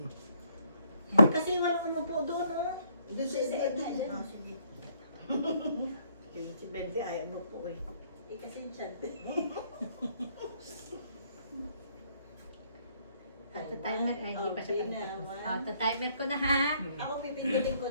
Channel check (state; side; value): inverted; both; correlation -0.67